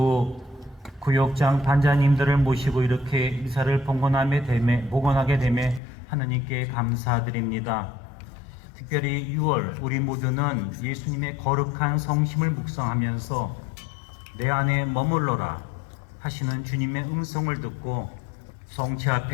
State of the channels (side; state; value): right; drops out; at 5.8 s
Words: 구역장 반장님들을 모시고 이렇게 미사를 봉헌하게 됨에 하느님께 감사드립니다. 특별히 6월 우리 모두는 예수님의 거룩한 성심을 묵상하면서 내 안에 머물러라 하시는 주님의 음성을 듣고 성체